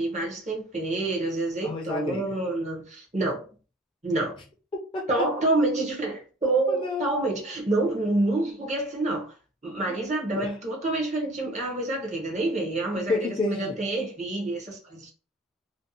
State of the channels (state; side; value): normal; both; correlation 0.47